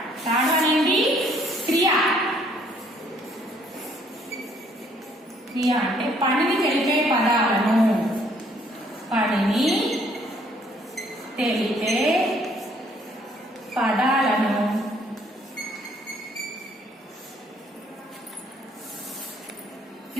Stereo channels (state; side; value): normal; both; correlation 0.64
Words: వన్ ఏంటి? క్రియ. క్రియ అంటే పనిని తెలిపే పదాలను. పనిని తెలిపే పదాలను